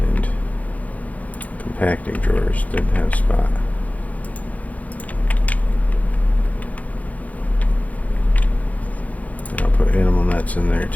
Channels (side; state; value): right; late; 0.073 ms